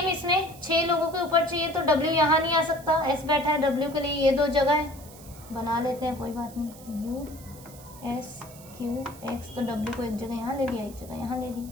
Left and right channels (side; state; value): right; noise; hiss, 20 dB below the sound